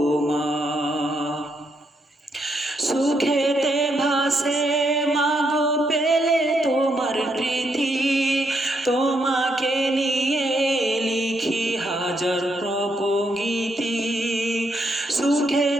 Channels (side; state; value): both; normal; correlation 0.77